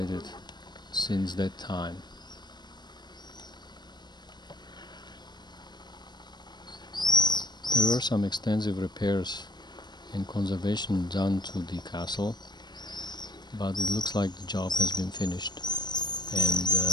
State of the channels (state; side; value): late; right; 0.21 ms